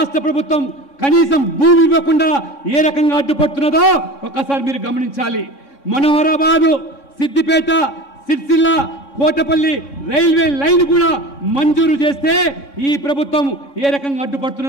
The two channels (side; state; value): right; late; 3.6 ms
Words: ప్రభుత్వం కనీసం భూమి ఇవ్వకుండా ఏ రకంగా అడ్డుపడుతున్నదో ఒకసారి మీరు గమనించాలి. మనోహరాబాదు, సిద్దిపేట, సిరిసిల్ల, కోటపల్లి రైల్వే లైన్ కూడా మంజూరు చేస్తే ఈ ప్రభుత్వం ఏ రకంగా